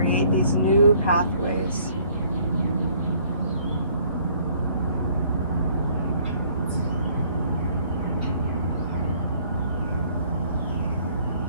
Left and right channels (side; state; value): both; inverted; correlation -0.61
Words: these new pathways.